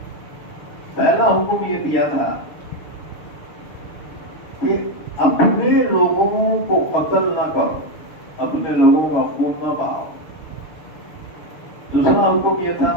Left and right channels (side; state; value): right; late; 6.8 ms